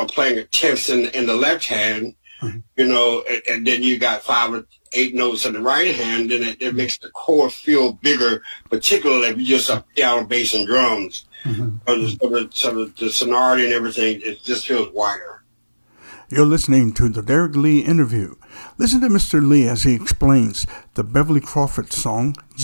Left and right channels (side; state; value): both; inverted; correlation -1.00